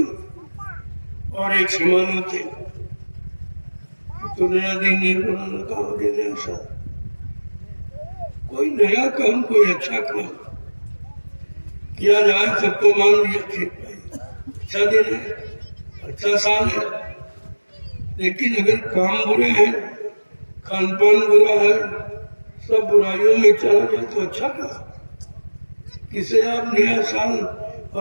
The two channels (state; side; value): inverted; both; correlation -1.00